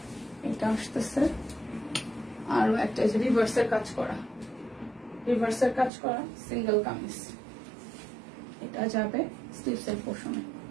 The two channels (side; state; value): left; drops out; at 5.9 s